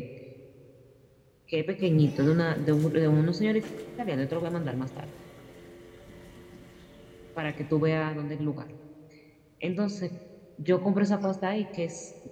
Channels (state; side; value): identical; both; correlation 1.00